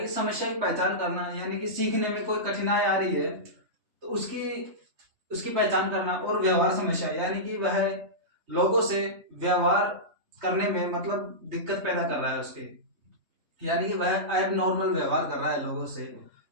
समस्या की पहचान करना, यानी कि सीखने में कोई कठिनाई आ रही है तो उसकी पहचान करना, और व्यवहार समस्या यानी कि वह लोगों से व्यवहार करने में मतलब दिक्कत पैदा कर रहा है उसके, यानी कि वह एबनॉर्मल व्यवहार कर रहा है लोगों से,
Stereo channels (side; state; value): left; late; 3.3 ms